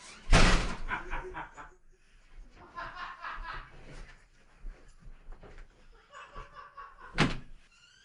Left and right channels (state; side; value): identical; both; correlation 1.00